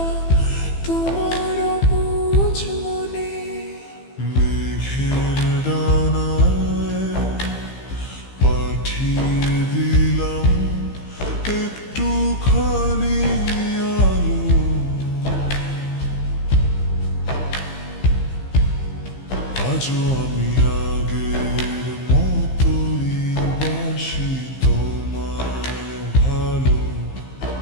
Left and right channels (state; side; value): late; right; 15 ms